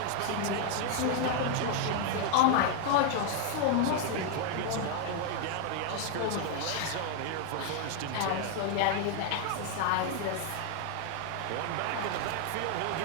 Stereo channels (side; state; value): both; different; correlation 0.00